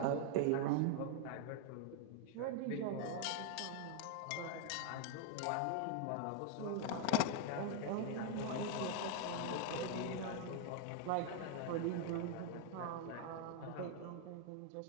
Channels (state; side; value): different; both; correlation 0.00